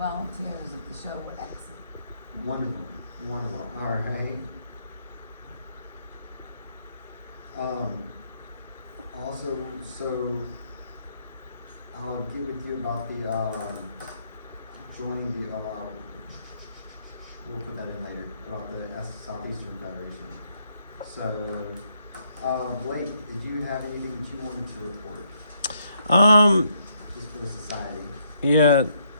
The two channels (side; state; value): both; inverted; correlation -0.72